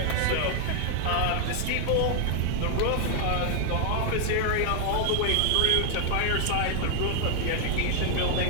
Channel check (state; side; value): different; both; correlation 0.00